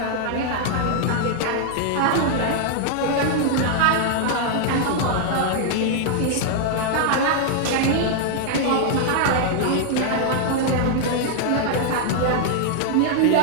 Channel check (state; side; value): different; both; correlation -0.01